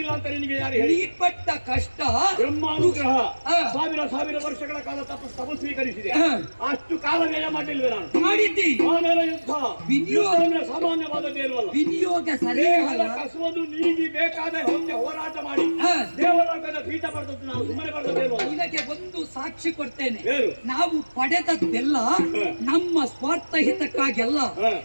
ಅಂತ ನಿನಗೆ ಯಾರು ಹೇಳಿ? ನೀ ಪಟ್ಟ ಕಷ್ಟ ಬ್ರಹ್ಮಾನುಗ್ರಹ ಸಾವಿರ ವರ್ಷಗಳ ಕಾಲ ತಪಸ್ಸು ಸ್ವೀಕರಿಸಿದೆ. ಅಷ್ಟು ಕಾಲ ವ್ಯಯ ಮಾಡಲಿಲ್ವೇ? ನಾನು ಮಾಡಿದ್ದಿ. ಆಮೇಲೆ ಯುದ್ಧ ಸಾಮಾನ್ಯವಾದದ್ದೇ ಇಲ್ವಲ್ಲ. ವಿನಿಯೋಗ ಸರಿ ಕಸುವುದು ನೀಗಿ ಬೇಕಾದ ಹೋರಾಟ ಮಾಡಿ ದೇವಲೋಕದ ಪೀಠ ಪಡೆದದ್ದು ನಾವು ಸುಮ್ಮನೆ ಬರ್ತದೇಲ್ವ? ಇದಕ್ಕೆ ಒಂದು ಸಾಕ್ಷಿ ಕೊಡ್ತೇನೆ. ನಾವು ಪಡೆದದ್ದೆಲ್ಲ ನಮ್ಮ ಸ್ವಾರ್ಥ ಹಿತಕ್ಕಾಗೆಲ್ಲ.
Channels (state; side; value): inverted; both; correlation -1.00